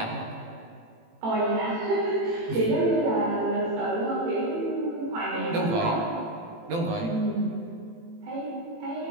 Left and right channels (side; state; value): left; late; 18 ms